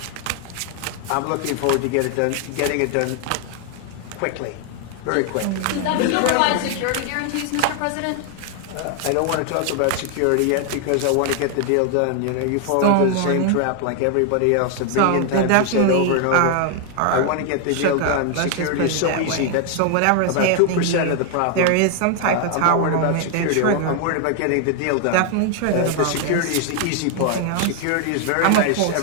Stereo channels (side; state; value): both; different; correlation 0.00